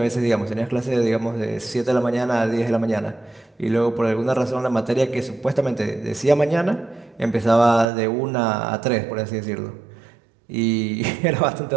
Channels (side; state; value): left; drops out; at 7.9 s